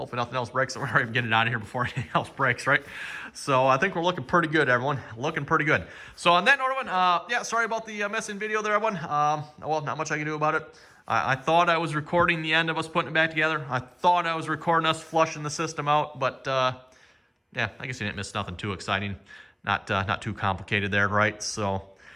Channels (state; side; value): identical; both; correlation 1.00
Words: nothing else breaks, so we're already getting it out of here before anything else breaks, right? So I think we're looking pretty good, everyone. Looking pretty good. So on that note, everyone, yeah, sorry about the missing video there, everyone. Well, not much I can do about it. I thought I was recording the end of us putting it back together. I thought I was recording us flushing the system out, but yeah, I guess you didn't miss nothing too exciting. Not too complicated there, right? So,